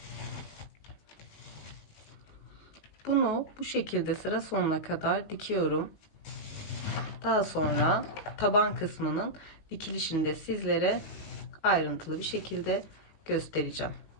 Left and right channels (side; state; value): right; late; 19 ms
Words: Bunu bu şekilde sıra sonuna kadar dikiyorum. Daha sonra taban kısmının dikilişini de sizlere ayrıntılı bir şekilde göstereceğim.